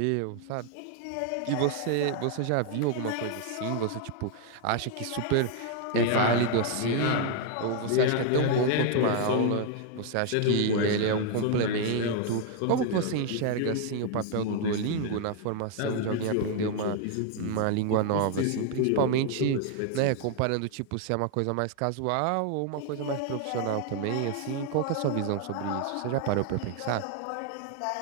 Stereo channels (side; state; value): both; different; correlation 0.00